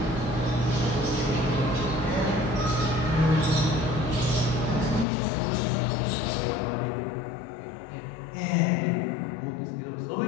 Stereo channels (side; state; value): right; drops out; at 5.1 s